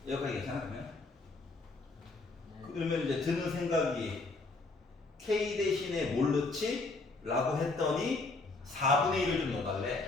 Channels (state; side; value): quieter; right; 3.4 dB